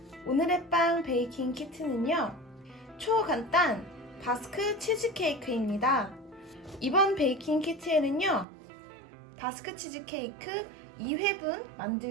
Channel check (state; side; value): drops out; left; at 8.5 s